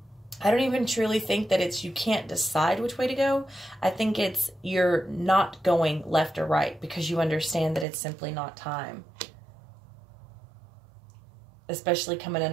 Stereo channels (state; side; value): drops out; left; at 7.9 s